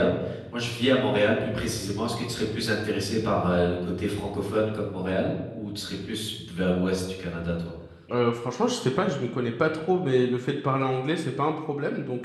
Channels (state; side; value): identical; both; correlation 1.00